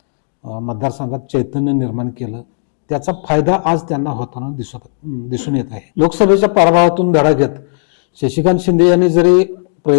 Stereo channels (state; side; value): silent; right; digital silence